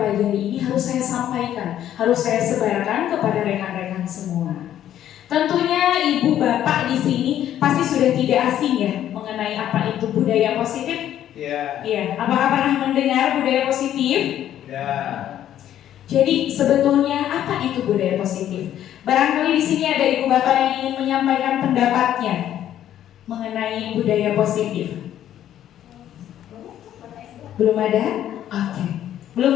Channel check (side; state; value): right; quieter; 11.3 dB